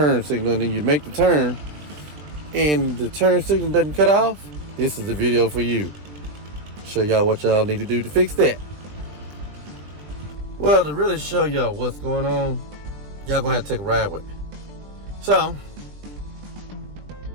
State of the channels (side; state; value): left; late; 20 ms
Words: signal, and then you make the turn, and the turn signal doesn't cut off, this is the video for you. Show y'all what y'all need to do to fix that. Well, to really show y'all what's going on, y'all gonna have to take a ride with me. So,